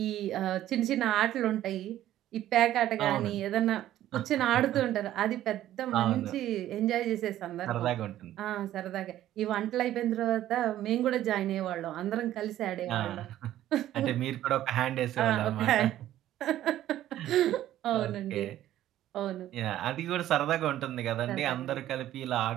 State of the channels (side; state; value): left; quieter; 13.1 dB